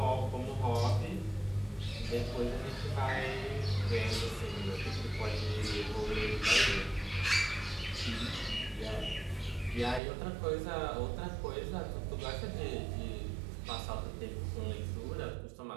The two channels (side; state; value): left; drops out; at 10.0 s